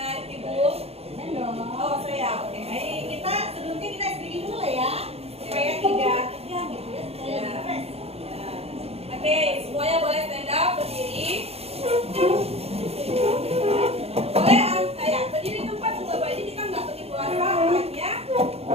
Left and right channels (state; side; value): late; left; 0.29 ms